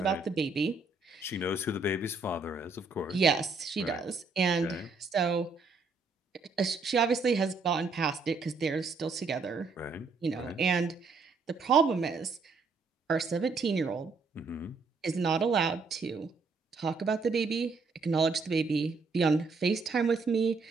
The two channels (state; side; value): quieter; left; 4.2 dB